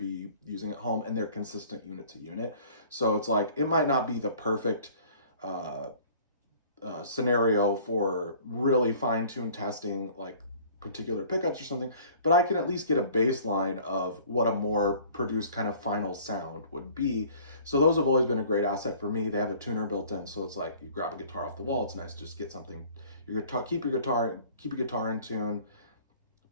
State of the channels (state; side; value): inverted; both; correlation -0.51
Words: using at home, and they're consistent unit to unit. So it's like, it might not be the perfect scenario for really fine-tuned testing like particular pickups or something, but I can at least get a baseline of what a more produced kind of final sound would be. So those have always been a great asset for me. They have a tuner built in, so it's like you grab a guitar off the wall. It's nice to just get something, your guitar, keep your guitar in tune,